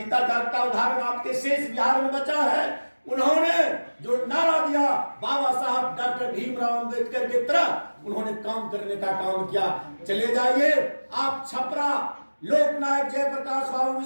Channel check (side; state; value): both; inverted; correlation -1.00